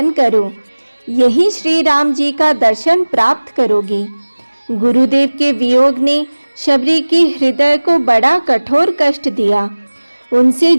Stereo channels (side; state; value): both; inverted; correlation -1.00